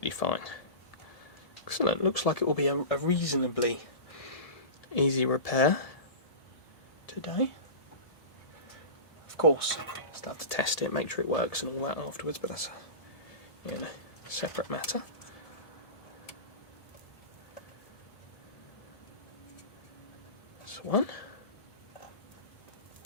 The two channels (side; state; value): right; late; 1.7 ms